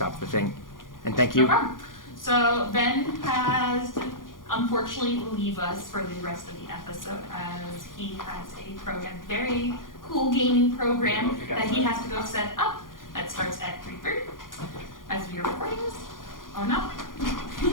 the thing. And thank you. No problem. So Ben has unfortunately leave us for the rest of the episode as he has a very cool gaming program that he has to go set up. That starts at 3:30 as we are recording this. Oh no.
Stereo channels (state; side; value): late; right; 0.90 ms